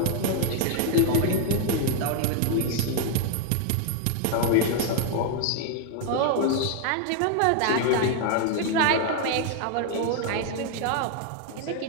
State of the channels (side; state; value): both; different; correlation 0.00